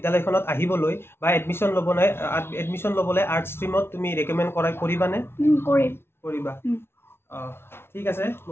আহিবলৈ বা এডমিশ্যন ল'বলৈ আৰ্টছ ষ্ট্ৰীমত তুমি ৰেকমেণ্ড কৰিবানে? কৰিবা। ঠিক আছে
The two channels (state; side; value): late; right; 0.12 ms